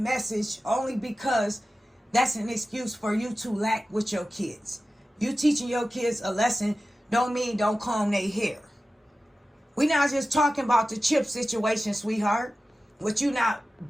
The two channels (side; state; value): both; normal; correlation 0.94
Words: only because that's an excuse for you to lack with your kids. You teaching your kids a lesson don't mean don't comb their hair. We not just talking about the chip situation, sweetheart. With you not